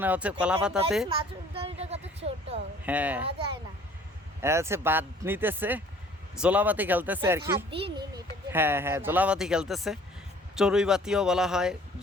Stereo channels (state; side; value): normal; both; correlation 0.54